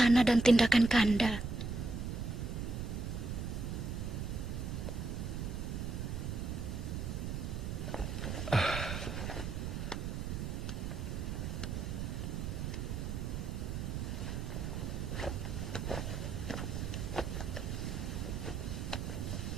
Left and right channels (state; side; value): noise; right; rumble, 3 dB below the sound